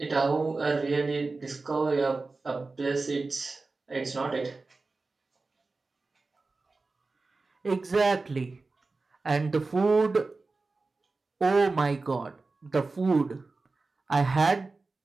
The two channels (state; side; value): quieter; left; 3.7 dB